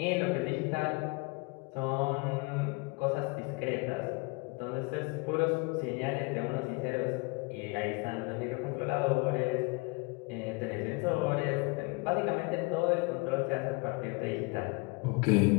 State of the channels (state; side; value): quieter; right; 28.6 dB